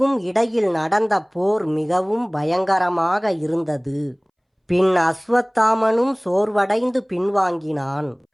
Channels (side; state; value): both; identical; correlation 1.00